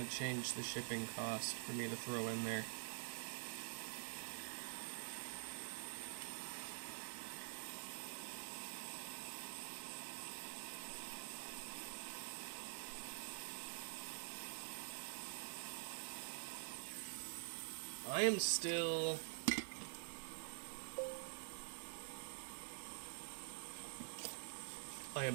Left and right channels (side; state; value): left; silent; digital silence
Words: to change the shipping cost for me to throw in there. I am still... I